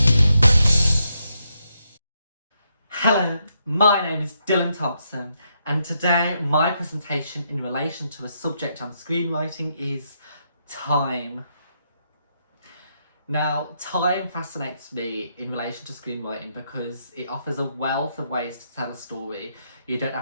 Hello, my name is Dylan Thompson, and today my presentation in relation to a subject on screenwriting is time. Now, time fascinates me in relation to screenwriting because it offers a wealth of ways to tell a story. You don't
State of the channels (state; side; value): inverted; both; correlation -0.79